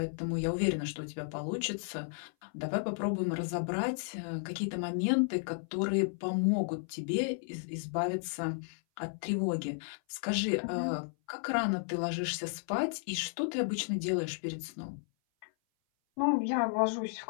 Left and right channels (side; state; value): right; silent; 55 dB below the other